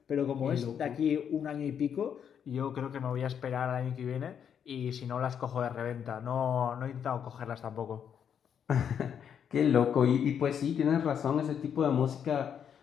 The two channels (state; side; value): quieter; right; 8.2 dB